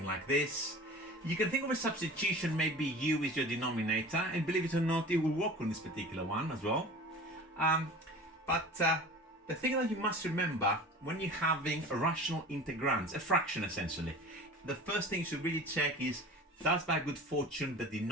like this. You can think of a substitution, maybe u is your denominator, and believe it or not, it will work on this particular one as well. But the thing that you must remember when you're having a rational integrands, a fraction essentially, the first thing you should really check is does by good fortune the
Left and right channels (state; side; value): normal; both; correlation 0.39